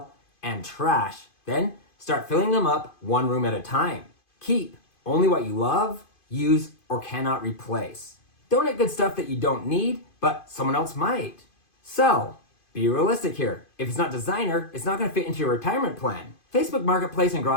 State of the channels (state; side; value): late; right; 2.5 ms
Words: and trash. Then start filling them up one room at a time. Keep only what you love, use, or cannot replace. Donate good stuff that you don't need, but someone else might. Sell. Be realistic here. If it's not designer, it's not going to fit into your retirement plan. Facebook Marketplace and